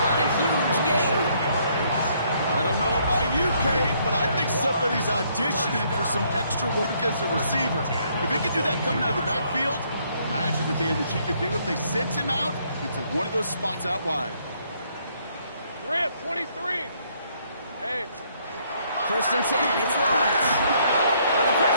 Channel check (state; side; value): inverted; both; correlation -0.68